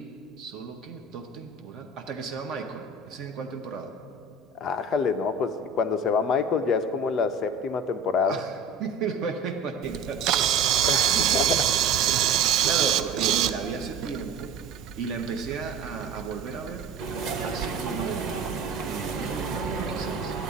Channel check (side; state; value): left; quieter; 3.6 dB